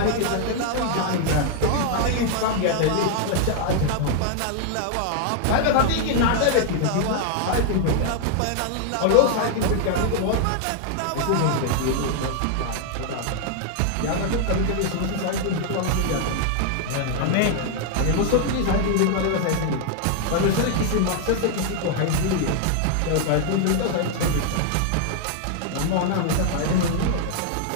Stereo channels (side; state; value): both; different; correlation 0.00